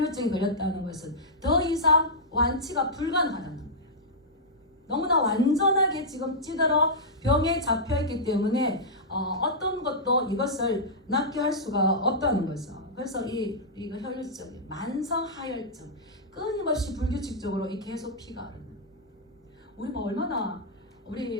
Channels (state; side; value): normal; both; correlation -0.10